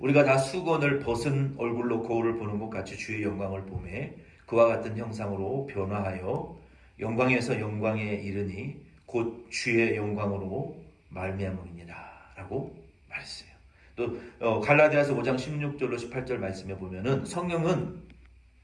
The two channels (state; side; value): identical; both; correlation 1.00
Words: 다 수건을 벗은 얼굴로 거울을 보는 것 같이 주의 영광을 보매 그와 같은 형상으로 변화하여 영광에서 영광에 이르니 곧 주의 영광으로 말미암음이니라 라고 말했어요. 또 갈라디아서 5장 16절로 18절 말씀해 보면은 성령은